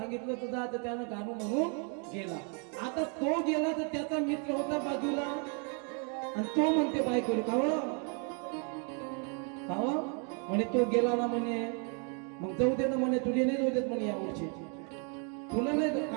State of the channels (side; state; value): left; quieter; 39.1 dB